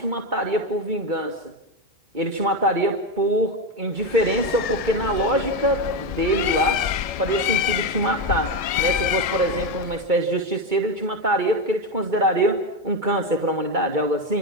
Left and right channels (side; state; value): left; late; 1.7 ms